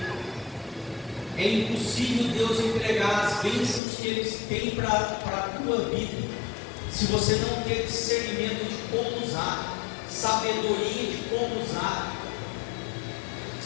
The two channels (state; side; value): drops out; right; at 3.8 s